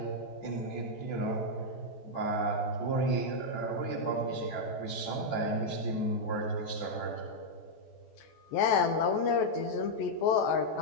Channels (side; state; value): right; late; 14 ms